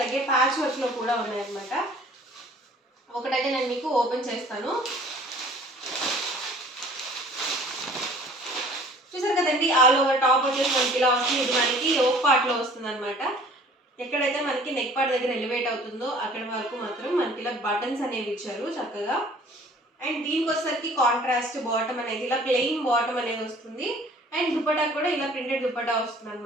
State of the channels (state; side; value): normal; both; correlation 0.51